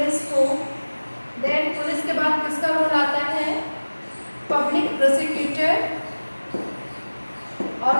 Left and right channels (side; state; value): both; inverted; correlation -1.00